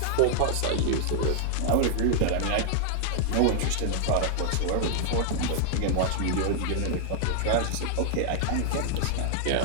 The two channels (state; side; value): different; both; correlation 0.00